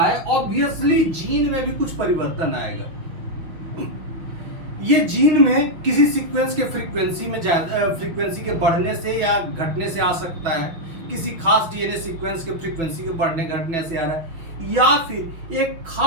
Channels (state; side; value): late; left; 6.1 ms